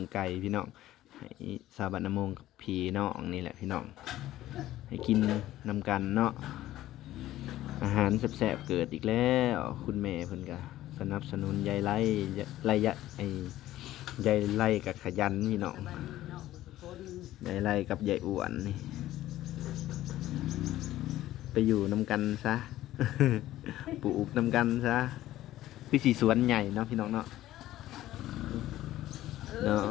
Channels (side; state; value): right; quieter; 14.5 dB